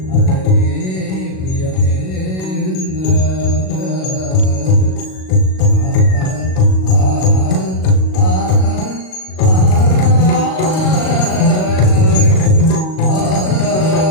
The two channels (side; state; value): right; late; 38 ms